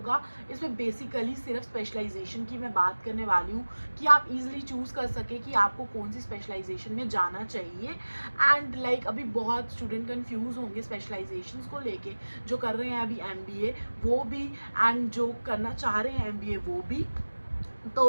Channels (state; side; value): inverted; both; correlation -1.00